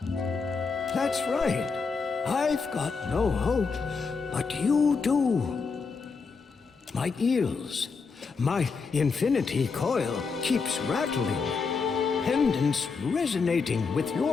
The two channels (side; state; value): right; quieter; 5.0 dB